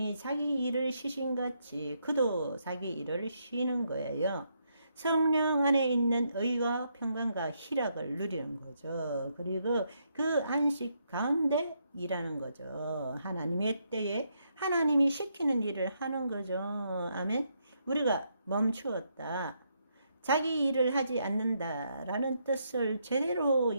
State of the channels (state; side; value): inverted; both; correlation -0.77